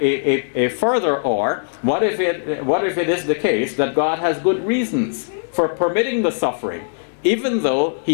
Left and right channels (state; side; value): silent; right; 66 dB below the other